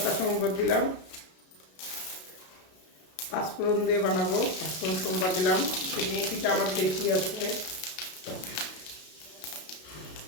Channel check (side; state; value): right; late; 32 ms